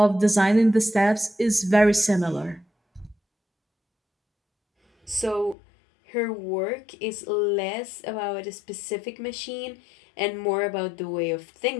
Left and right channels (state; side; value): drops out; right; at 5.6 s